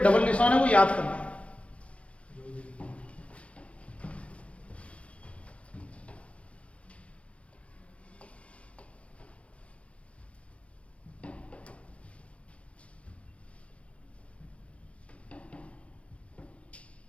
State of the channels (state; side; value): late; right; 0.062 ms